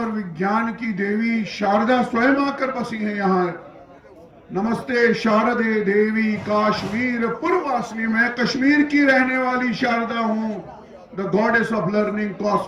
विज्ञान की देवी शारदा स्वयं आकर बसी है यहाँ। नमस्ते शारदे देवी काश्मीर पूर्ववासिनी। मैं कश्मीर की रहने वाली शारदा हूं, the goddess of learning,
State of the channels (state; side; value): identical; both; correlation 1.00